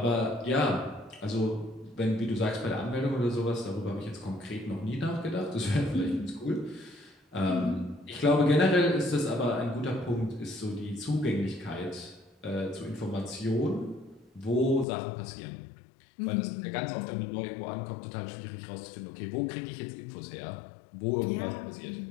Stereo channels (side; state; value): right; drops out; at 14.9 s